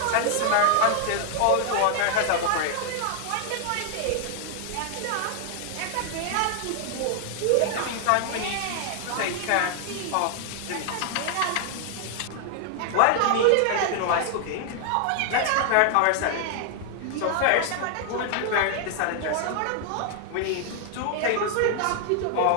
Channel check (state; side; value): different; both; correlation 0.00